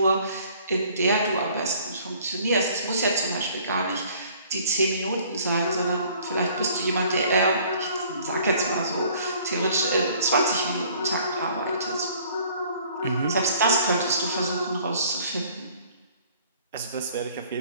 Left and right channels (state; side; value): inverted; both; correlation -0.56